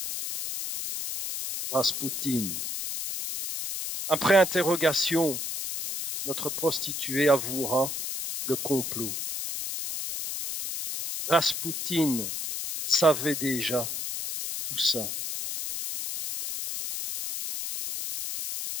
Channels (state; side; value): noise; left; hiss, 5 dB below the sound